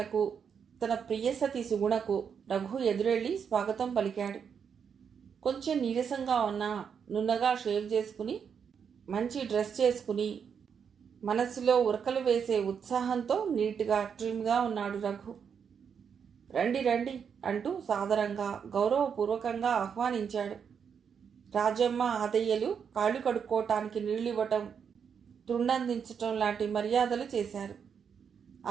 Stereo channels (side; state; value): left; quieter; 7.1 dB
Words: తన ప్రియసతి సుగుణకు రఘు ఎదురెళ్ళి స్వాగతం పలికాడు. కొంచెం నీరసంగా ఉన్నా నున్నగా షేవ్ చేసుకుని మంచి డ్రెస్ చేసుకుని మనస్సులో ఉరకలు వేసే ఉత్సాహంతో నీట్గా ట్రిమ్గా ఉన్నాడు రఘు. రండి రండి అంటూ సాదరంగా గౌరవపూర్వకంగా ఆహ్వానించాడు. రాజమ్మ ఆదయ్యలు కాళ్ళు కడుక్కోవటానికి నీళ్ళివ్వటం, తుండందించటం లాంటి మర్యాదలు చేశారు.